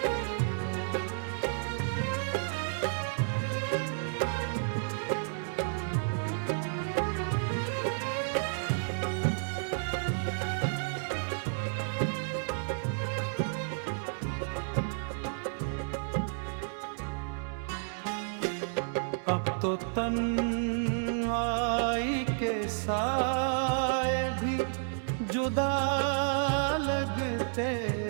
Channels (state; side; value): silent; left; digital silence